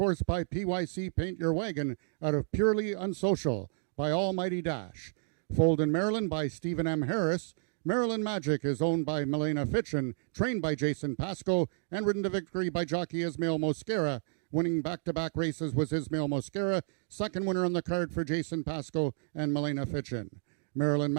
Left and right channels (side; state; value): left; silent; digital silence